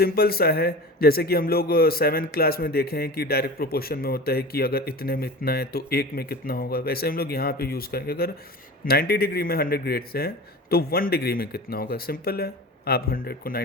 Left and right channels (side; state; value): both; normal; correlation 0.34